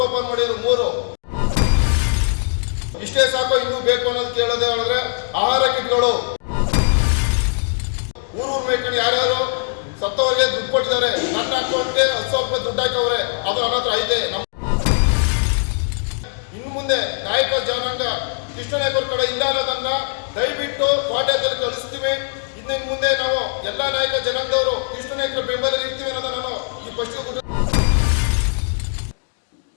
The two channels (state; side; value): silent; right; digital silence